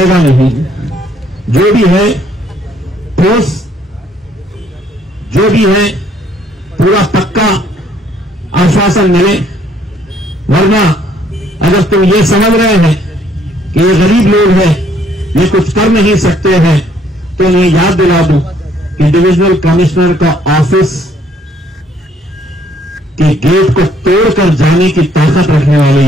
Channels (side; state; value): both; normal; correlation 0.65